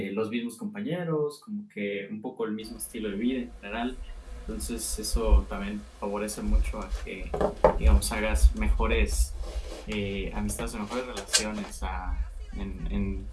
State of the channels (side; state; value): both; identical; correlation 1.00